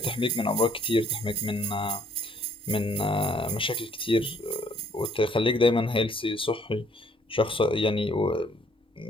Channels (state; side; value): normal; both; correlation 0.64